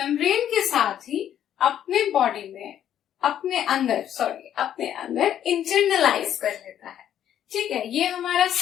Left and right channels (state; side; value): quieter; right; 10.4 dB